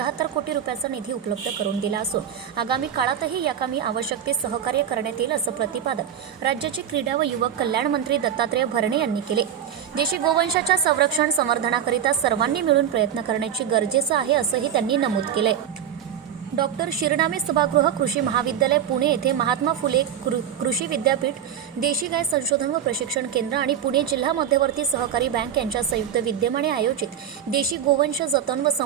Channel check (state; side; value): quieter; left; 9.3 dB